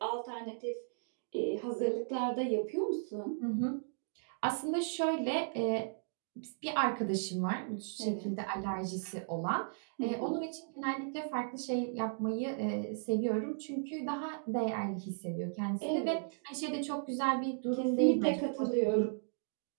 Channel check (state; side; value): silent; left; digital silence